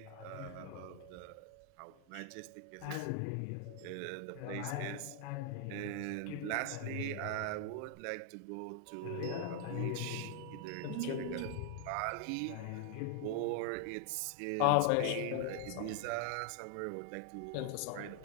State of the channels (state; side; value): different; both; correlation 0.00